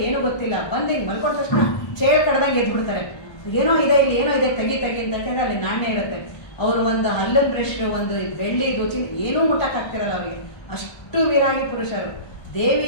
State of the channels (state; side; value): late; right; 1.3 ms